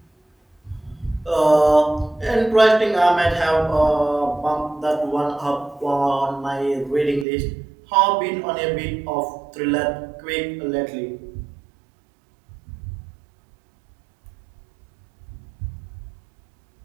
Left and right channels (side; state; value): left; drops out; at 7.2 s